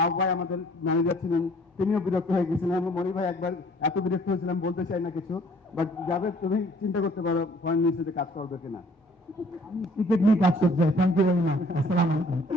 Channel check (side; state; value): both; normal; correlation 0.56